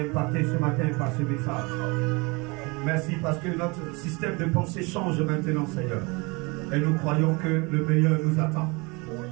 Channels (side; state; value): left; quieter; 27.5 dB